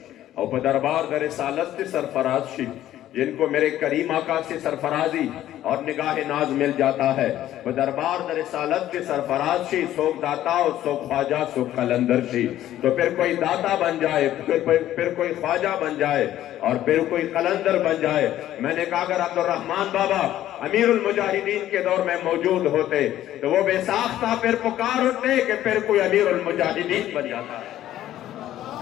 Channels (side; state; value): right; quieter; 12.9 dB